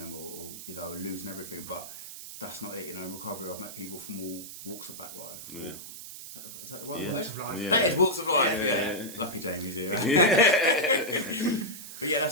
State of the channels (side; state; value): right; noise; hiss, 12 dB below the sound